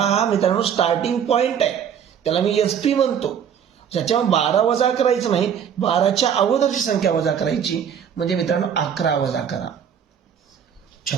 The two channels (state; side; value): quieter; left; 8.2 dB